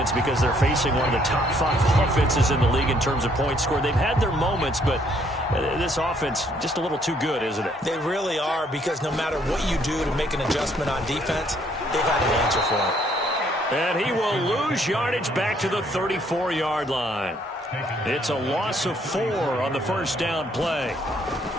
because they're facing one of the top 5 offenses in the league in terms of points scored. They've had their moments, but this offense just a little too good, isn't it? They really are, because no matter what you do to make an adjustment on defense, they've had an answer for it. And he will lose yardage back to the 34-yard line. It's a loss of 4 on the first down play.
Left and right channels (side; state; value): both; normal; correlation 0.67